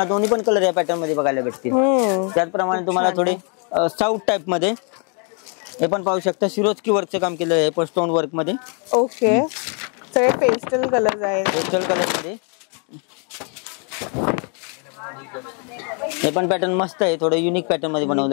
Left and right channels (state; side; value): quieter; right; 39.2 dB